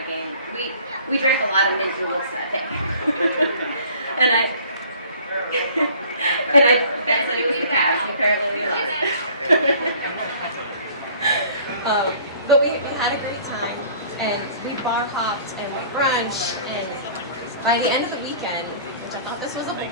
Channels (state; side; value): inverted; both; correlation -0.51